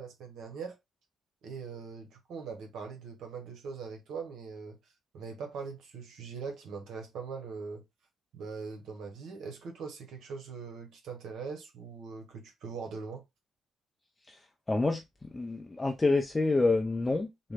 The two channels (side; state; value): both; normal; correlation 0.88